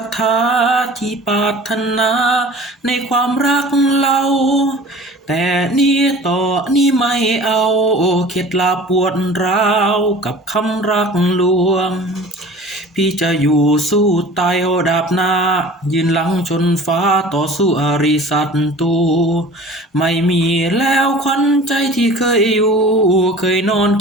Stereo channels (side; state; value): both; normal; correlation 0.43